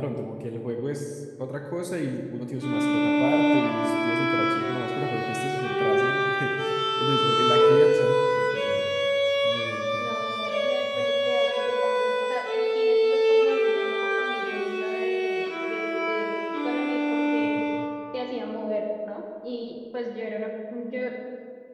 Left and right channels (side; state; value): both; identical; correlation 1.00